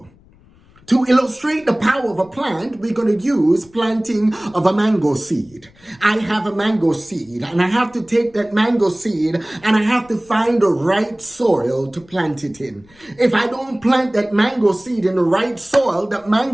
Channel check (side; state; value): left; noise; rumble, 28 dB below the sound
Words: To illustrate the power of a plant, we're going to use planting of a mango seed. I have a mango seed and I have to take that mango seed and I have to find the right soil to plant it in. If I don't plant that mango seed in the right soil, that